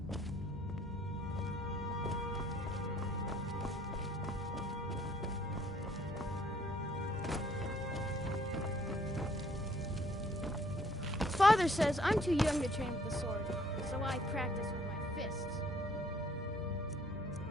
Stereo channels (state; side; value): normal; both; correlation 0.62